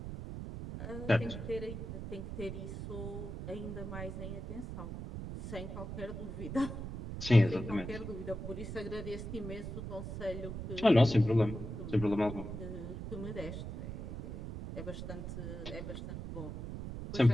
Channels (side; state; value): right; noise; rumble, 7 dB below the sound